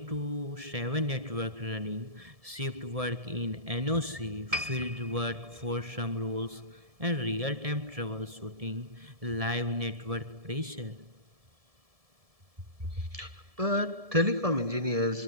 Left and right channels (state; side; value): late; left; 1.7 ms